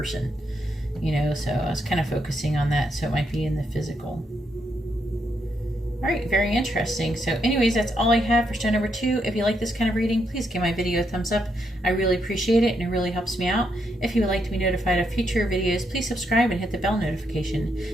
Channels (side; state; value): both; normal; correlation 0.79